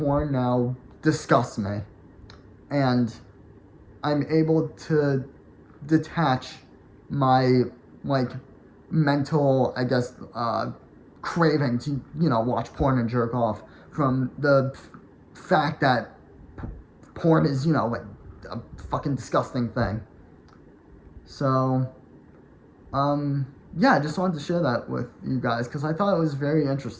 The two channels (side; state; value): both; identical; correlation 1.00